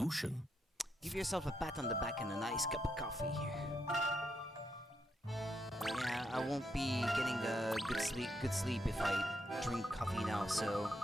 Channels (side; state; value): both; normal; correlation 0.80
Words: Give yourself a pat on the back and a nice cup of coffee. Yeah, I won't be getting a good sleep if I drink coffee now, so